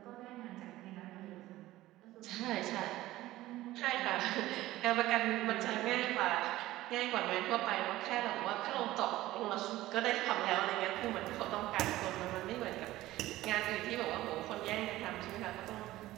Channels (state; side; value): quieter; left; 16.3 dB